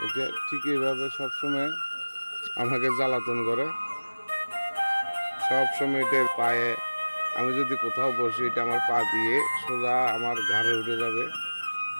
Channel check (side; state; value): both; inverted; correlation -1.00